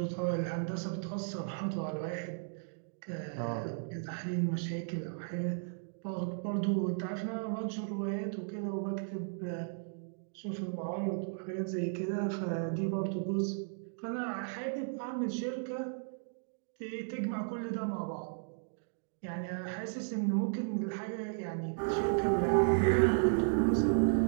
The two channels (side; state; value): left; silent; digital silence